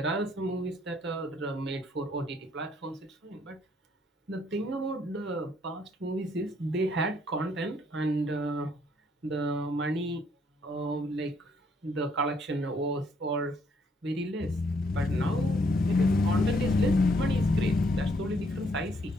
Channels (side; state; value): both; normal; correlation 0.69